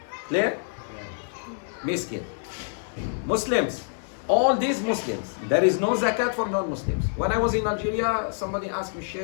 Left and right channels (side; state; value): right; silent; 61 dB below the other